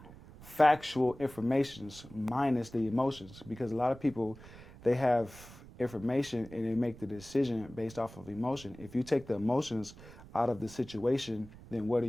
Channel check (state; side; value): noise; right; rumble, 18 dB below the sound